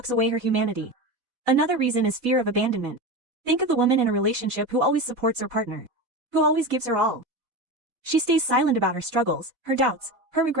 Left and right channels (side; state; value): left; late; 4.0 ms